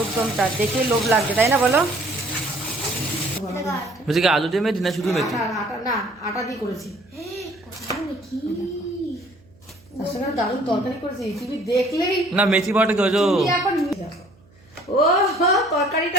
দমটা দেখে লোভ লাগছে, তাই না বলো? বলছি কি আলু দিয়ে মেথি না শুধু মেথি? আটা না, আটা দিয়ে করেছি। তার সঙ্গে দারুণ তরকারি করেছি, তুমি দেখলেই না মেথি পাউডার করেছো? তুমি এখন দেখো, ও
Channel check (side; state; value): right; noise; hum, 29 dB below the sound